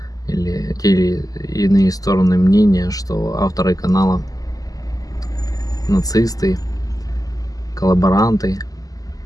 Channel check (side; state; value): right; late; 0.17 ms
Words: или те или иные стороны мнения, что авторы канала нацисты, коллаборанты,